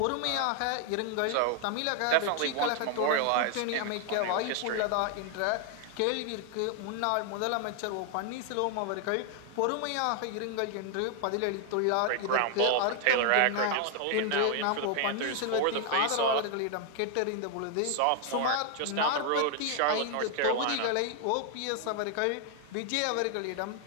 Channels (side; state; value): both; different; correlation 0.00